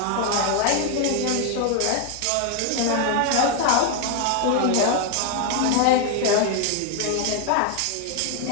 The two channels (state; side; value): different; both; correlation 0.01